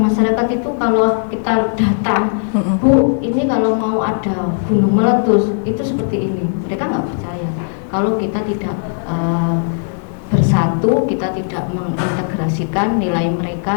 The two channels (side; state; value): right; silent; digital silence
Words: masyarakat itu kalau kita datang, Bu, ini kalau mau ada gunung meletus itu seperti ini, mereka nggak percaya. Kalau kita tidak bersatu, kita tidak mengintegrasikan nilai